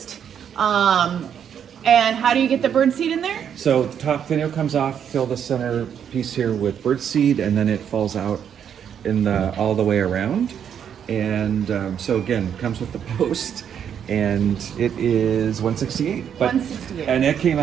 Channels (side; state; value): left; quieter; 8.5 dB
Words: And how do you get the bird seed in there? So the top finial comes off, fill the center piece here with bird seed, and then it falls out in all the way around. And so again, comes with the post, and it is 168. But, 168. And it came